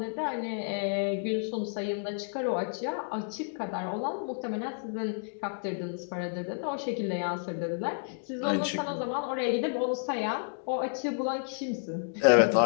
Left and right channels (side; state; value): right; silent; digital silence